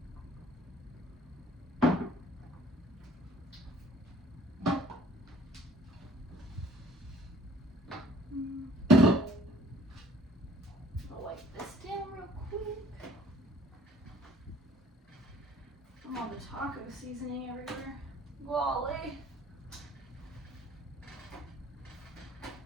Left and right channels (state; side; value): normal; both; correlation 0.56